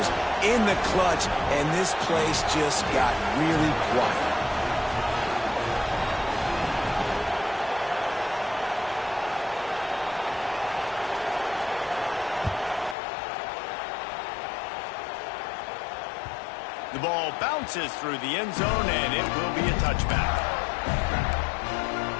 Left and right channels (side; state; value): right; drops out; at 13.0 s